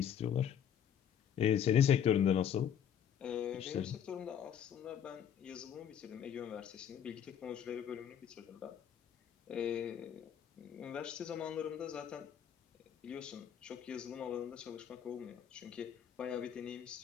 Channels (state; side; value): quieter; right; 8.9 dB